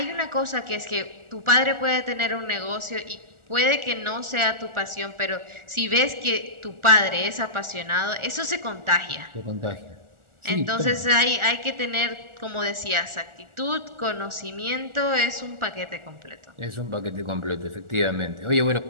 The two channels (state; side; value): late; left; 1.4 ms